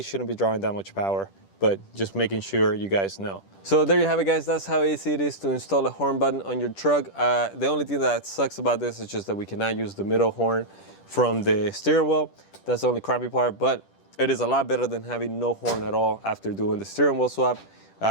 shouldn't be drawing that much power, but just making sure you guys know. So there you have it, guys. That's how easy it is to install a horn button on your truck. The only thing that sucks about this is just that we cannot use the middle horn from the steering wheel. That's the only crappy part, but it is a lot better than having no horn at all after doing the steering wheel swap.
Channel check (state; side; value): late; right; 10 ms